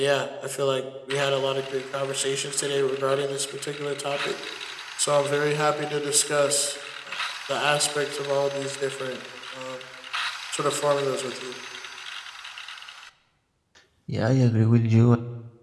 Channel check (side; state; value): both; identical; correlation 1.00